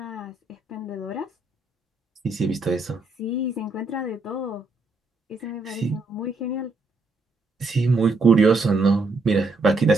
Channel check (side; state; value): left; quieter; 3.3 dB